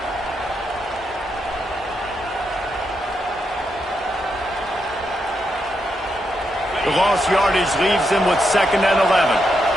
The lost yardage leaves them with 2nd and 11.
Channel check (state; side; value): normal; both; correlation 0.82